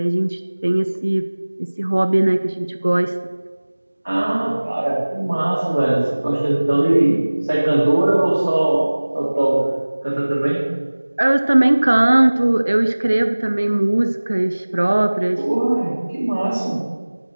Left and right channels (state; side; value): inverted; both; correlation -1.00